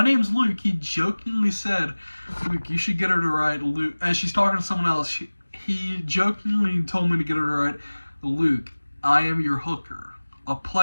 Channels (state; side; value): inverted; both; correlation -1.00